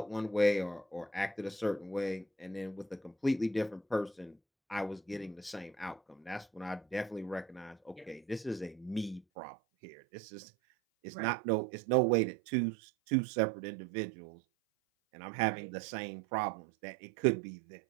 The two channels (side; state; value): left; drops out; at 9.2 s